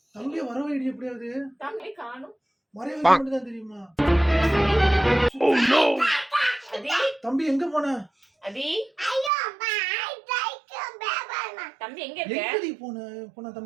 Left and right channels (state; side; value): drops out; left; at 9.3 s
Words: தம்பி வர வைடி எப்படியாவது? தம்பி காணோம். மறைய வைக்க மட்டும் தான் தெரியுமா? Oh no. அதி தம்பி எங்க போன? அதி ஐயோ அம்மா ஐ லைக் பேபா. தம்பி எங்க இருக்க? எங்கடி போன